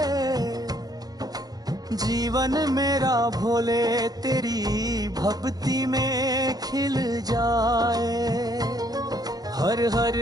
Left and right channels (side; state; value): left; late; 0.19 ms